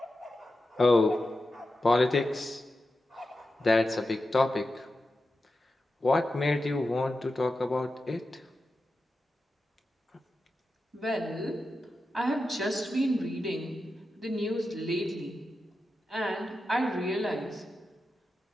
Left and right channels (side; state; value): both; normal; correlation 0.91